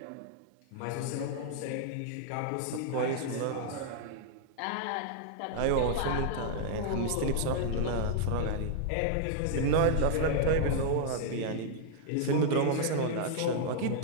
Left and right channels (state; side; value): different; both; correlation -0.01